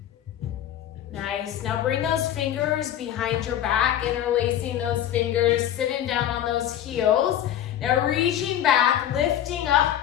Nice. Now bring those fingers behind your back, interlacing those fingers, sitting down on those heels. Now reaching back, lifting up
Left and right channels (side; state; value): right; quieter; 11.0 dB